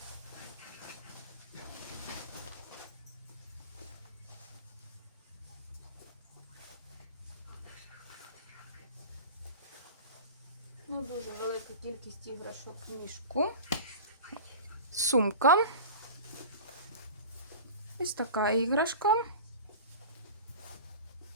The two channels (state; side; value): inverted; both; correlation -0.34